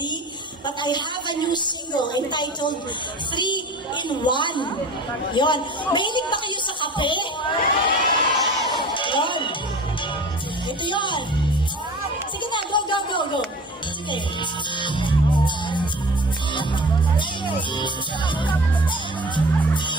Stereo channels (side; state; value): both; normal; correlation 0.40